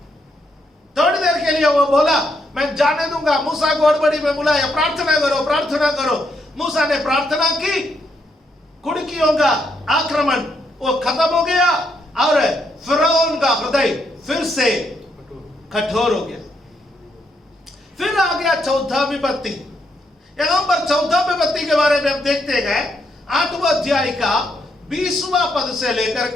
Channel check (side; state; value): both; normal; correlation 0.77